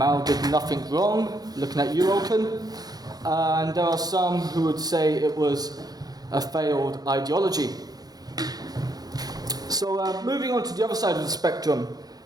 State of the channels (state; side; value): late; left; 0.19 ms